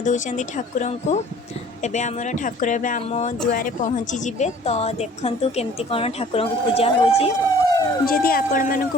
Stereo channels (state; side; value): normal; both; correlation 0.50